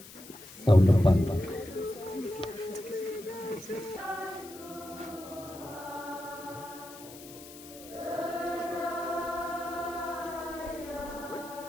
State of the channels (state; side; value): noise; left; hiss, 17 dB below the sound